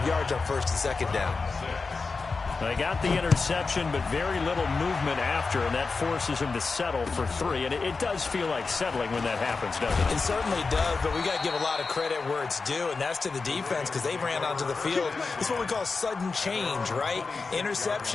yards on 1st and 2nd down. They got the interception, but very little movement after, and that forces him to settle for 3. And it does feel like settling when that happens, doesn't it? It certainly does, but we got to give a lot of credit where it's due, and that's to the defense because they ran onto the field. It's what we call sudden change, right?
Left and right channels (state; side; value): quieter; right; 4.3 dB